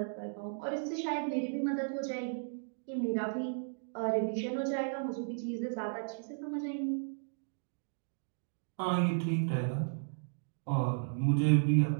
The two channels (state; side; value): silent; left; digital silence